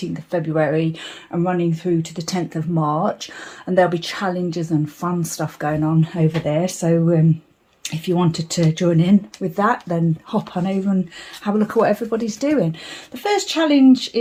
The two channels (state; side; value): identical; both; correlation 1.00